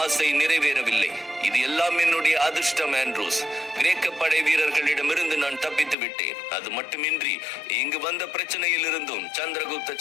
ஆசை நிறைவேறவில்லை. இது எல்லாம் என்னுடைய அதிர்ஷ்டம் ஆண்ட்ரூஸ். கிரேக்க படை வீரர்களிடமிருந்து நான் தப்பித்து விட்டேன். அது மட்டுமின்றி இங்கு வந்த பிரச்சனையில் இருந்தும் சந்திரகுப்த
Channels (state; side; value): drops out; right; at 6.0 s